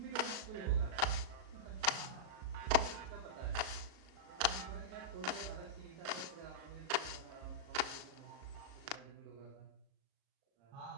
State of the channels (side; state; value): left; late; 37 ms